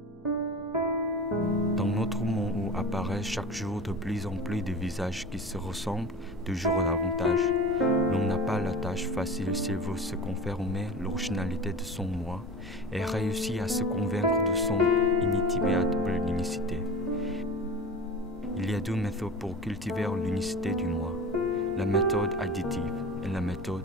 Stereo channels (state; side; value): normal; both; correlation 0.34